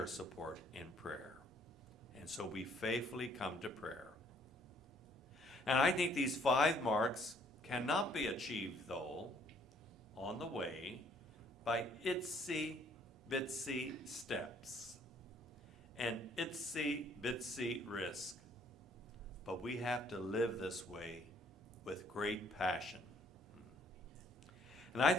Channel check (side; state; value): both; normal; correlation 0.63